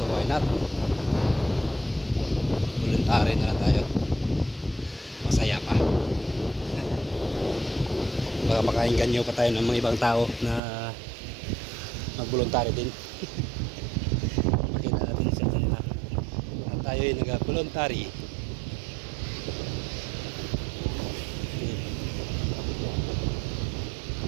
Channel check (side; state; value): left; drops out; at 10.6 s